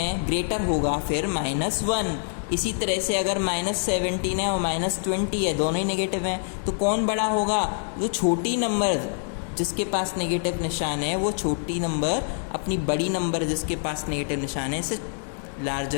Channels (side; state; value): right; silent; digital silence